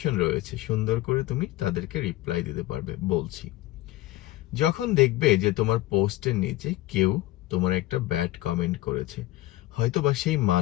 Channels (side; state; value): right; quieter; 16.7 dB